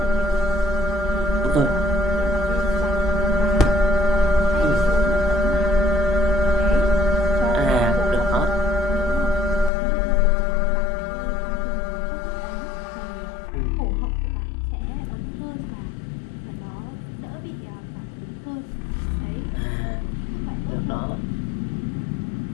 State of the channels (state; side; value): drops out; right; at 9.7 s